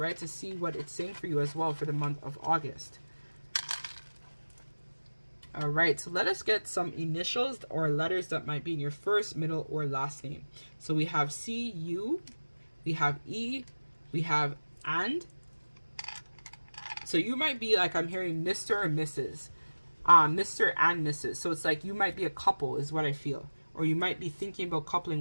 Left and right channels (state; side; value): inverted; both; correlation -1.00